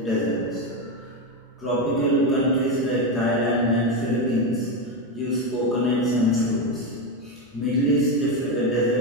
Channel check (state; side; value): normal; both; correlation 0.11